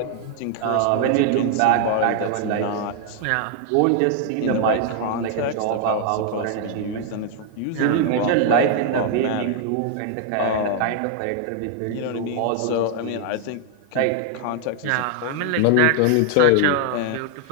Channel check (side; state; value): both; different; correlation 0.00